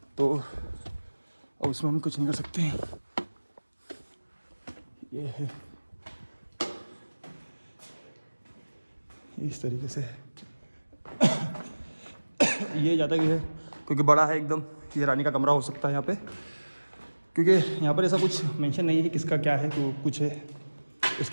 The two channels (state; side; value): inverted; both; correlation -1.00